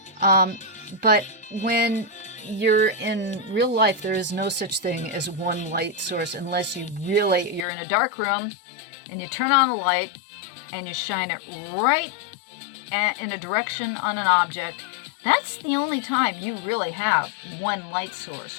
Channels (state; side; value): drops out; right; at 7.7 s